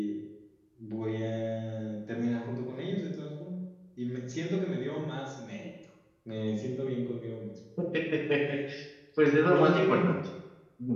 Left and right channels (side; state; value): both; identical; correlation 1.00